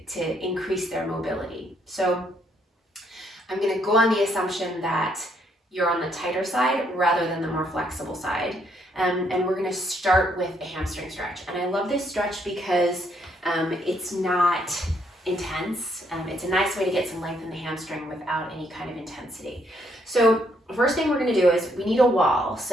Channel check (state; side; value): normal; both; correlation 0.71